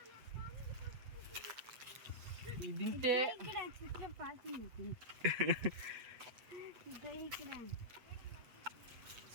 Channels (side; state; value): left; late; 8.1 ms